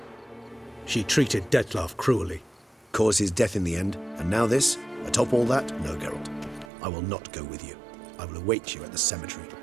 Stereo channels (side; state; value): left; drops out; at 6.7 s